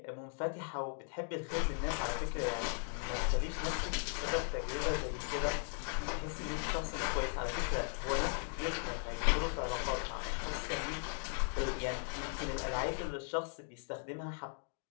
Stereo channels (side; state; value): right; silent; 53 dB below the other